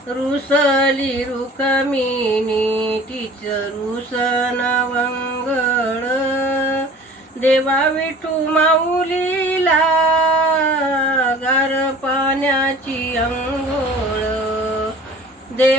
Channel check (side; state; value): both; normal; correlation 0.45